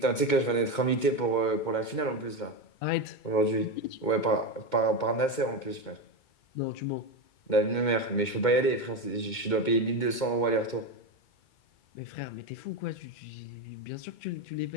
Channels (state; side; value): late; right; 2.2 ms